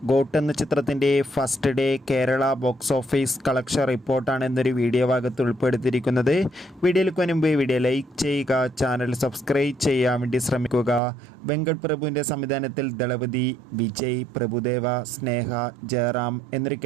ഗോട്ട് എന്ന ചിത്രത്തിൻ്റെ first day Kerala box office collection റിപ്പോർട്ടാണ് എന്നൊരു വീഡിയോ ഭാഗത്ത് ഉൾപ്പെടുത്തിയിരിക്കുന്നത്. വീഡിയോയിലേക്ക് മുൻപ് വീഡിയോ ലൈക്ക് ചെയ്യുക, ചാനൽ സബ്സ്ക്രൈബ് ചെയ്യാൻ വേണ്ടി ശ്രമിക്കുക. വെങ്കട് പ്രഭുവിൻ്റെ സംവിധാനത്തിൽ ദളപതി, വിജയ്, പ്രഭുദേവ, സ്നേഹ, ജയറാം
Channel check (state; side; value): drops out; left; at 11.0 s